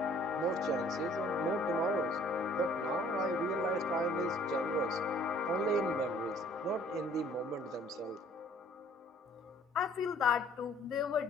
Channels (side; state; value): both; normal; correlation 0.57